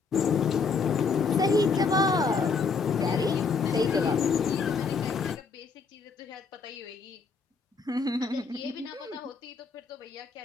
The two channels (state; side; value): quieter; right; 4.8 dB